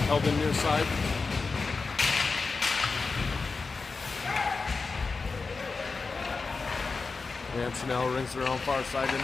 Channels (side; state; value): right; quieter; 4.3 dB